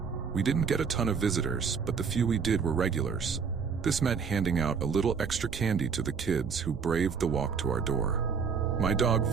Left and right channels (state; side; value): quieter; left; 6.0 dB